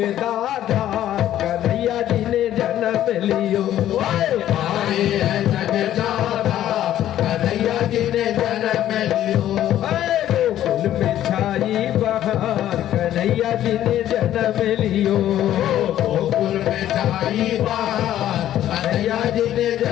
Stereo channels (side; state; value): right; quieter; 12.2 dB